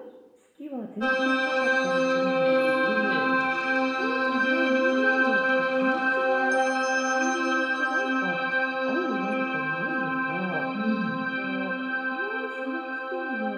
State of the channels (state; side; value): identical; both; correlation 1.00